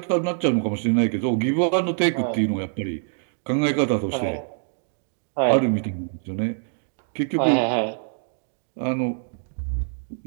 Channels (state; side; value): silent; left; digital silence